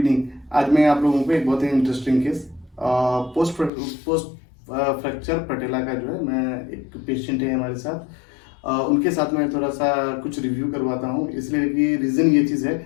आज मैं आप लोगों को एक बहुत ही interesting case post fracture पटेला का जो है, मैं एक पेशेंट है हमारे साथ, उनके साथ मैं थोड़ा सा कुछ रिव्यू करवाता हूँ, इसलिए कि रीज़न ये चीज़ है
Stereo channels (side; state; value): right; drops out; at 3.7 s